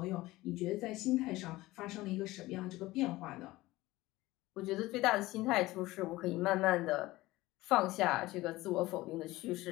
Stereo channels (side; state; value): right; quieter; 18.6 dB